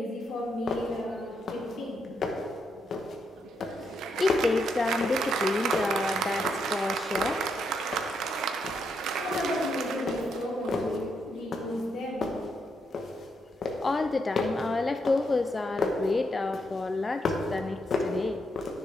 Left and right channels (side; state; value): both; normal; correlation 0.79